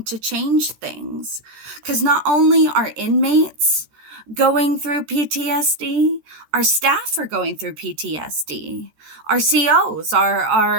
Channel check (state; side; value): late; left; 13 ms